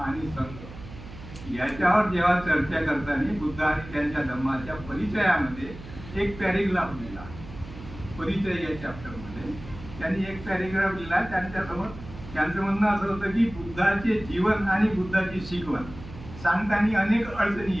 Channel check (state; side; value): noise; right; hum, 15 dB below the sound